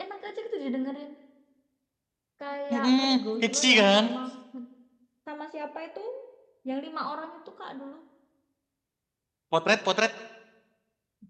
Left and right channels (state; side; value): identical; both; correlation 1.00